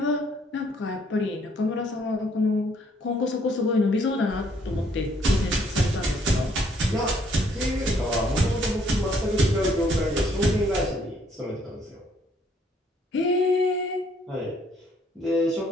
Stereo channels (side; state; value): both; normal; correlation 0.66